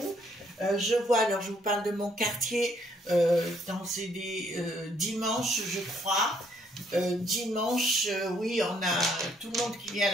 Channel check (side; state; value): both; normal; correlation 0.68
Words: Je vois, alors je vous parle de mon quartier, c'est des dimanches, je crois. Dimanche, oui, on a tout le monde qui vient à